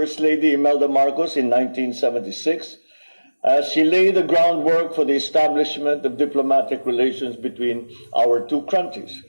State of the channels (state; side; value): inverted; both; correlation -1.00